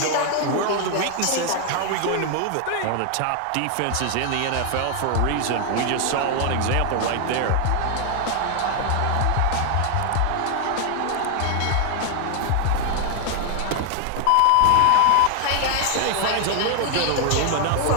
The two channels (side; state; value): both; different; correlation 0.00